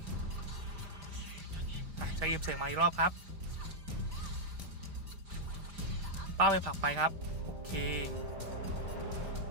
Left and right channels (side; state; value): left; late; 5.0 ms